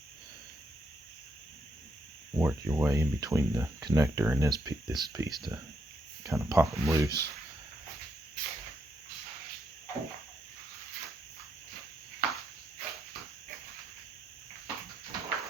work your way in between the connector and this piece to kind of pop them loose.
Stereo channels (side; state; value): both; normal; correlation 0.78